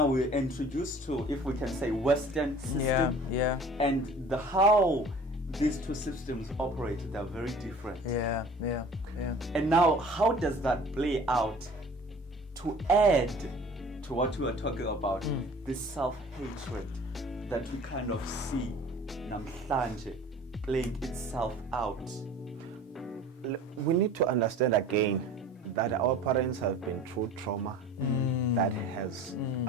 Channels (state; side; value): normal; both; correlation 0.45